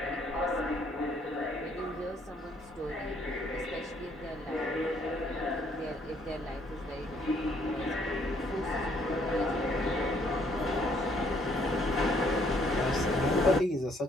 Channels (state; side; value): normal; both; correlation 0.66